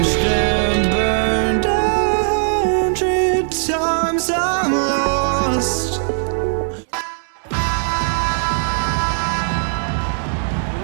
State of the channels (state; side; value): silent; left; digital silence